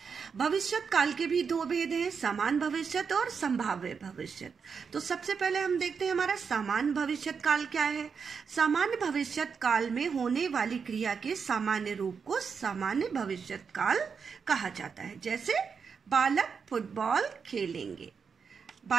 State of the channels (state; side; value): quieter; left; 6.0 dB